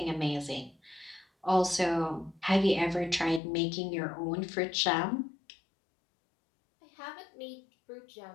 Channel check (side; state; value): right; drops out; at 3.4 s